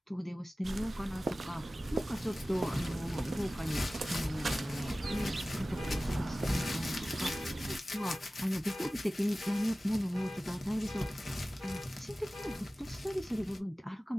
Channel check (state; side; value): normal; both; correlation 0.96